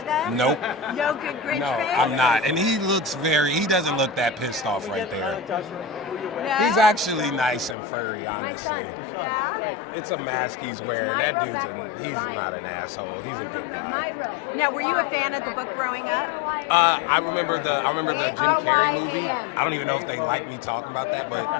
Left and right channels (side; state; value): right; drops out; at 7.8 s